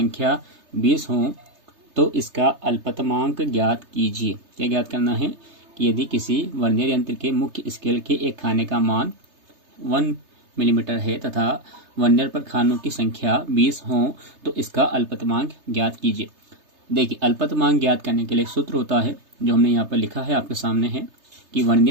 20 हो तो इसका अल्पतमांक ज्ञात कीजिए। क्या ज्ञात करना है कि यदि किसी वर्नियर यंत्र के मुख्य स्केल के एक खाने का मान 1 मिलीमीटर है तथा वर्नियर पर खानों की संख्या 20 हो तो इसका अल्पतमांक ज्ञात कीजिए। देखिए, अल्पतमांक ज्ञात करने के लिए सूत्र होता है जो हमने यहाँ पर लिखा है, आपके सामने है कि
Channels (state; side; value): late; left; 3.3 ms